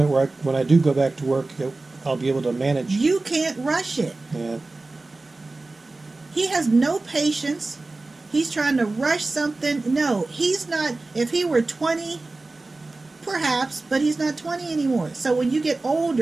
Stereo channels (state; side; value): quieter; left; 3.3 dB